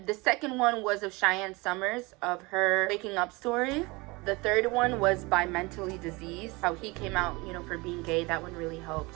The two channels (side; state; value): left; quieter; 24.8 dB